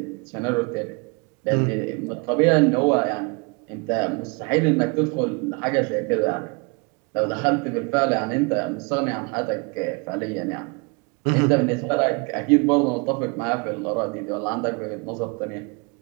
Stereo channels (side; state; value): left; quieter; 31.3 dB